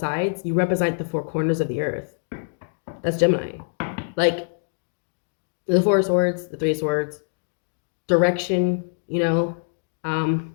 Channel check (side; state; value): right; silent; digital silence